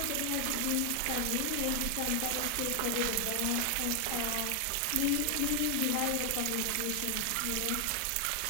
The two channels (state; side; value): different; both; correlation 0.00